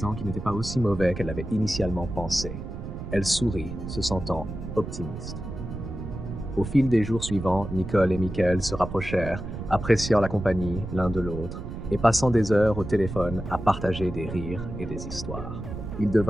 qu'il n'était pas aussi mauvais qu'elle l'avait initialement pensé. Elle sourit, se sentant optimiste. Au fil des jours suivants, Nicole et Michael se rapprochèrent, appréciant la compagnie l'un de l'autre et passant des heures au téléphone à partager des rires et des histoires. Ils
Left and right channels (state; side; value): noise; right; rumble, 8 dB below the sound